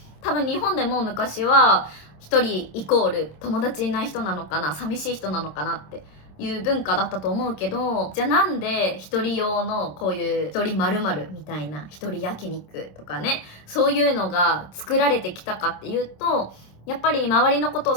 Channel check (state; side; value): late; right; 27 ms